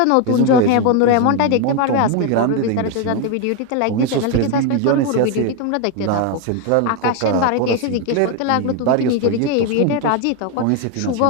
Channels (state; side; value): different; both; correlation 0.01